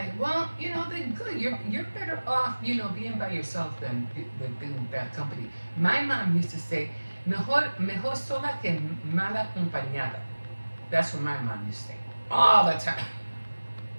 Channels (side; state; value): both; inverted; correlation -1.00